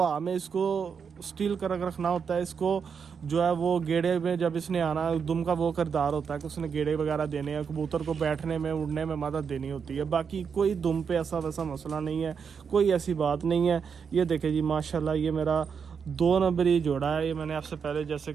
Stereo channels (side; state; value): left; quieter; 6.4 dB